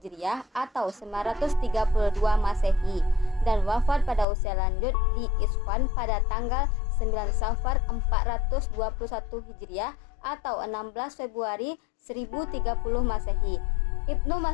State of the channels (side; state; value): right; drops out; at 4.2 s